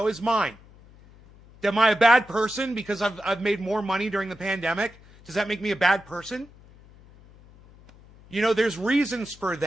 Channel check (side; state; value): left; noise; hum, 24 dB below the sound